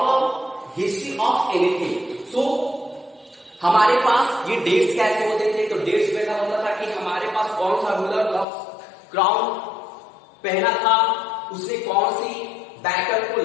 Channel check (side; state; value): right; drops out; at 8.5 s